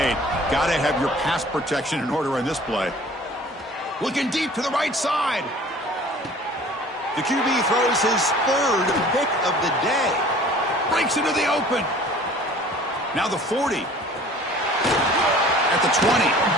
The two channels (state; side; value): normal; both; correlation 0.48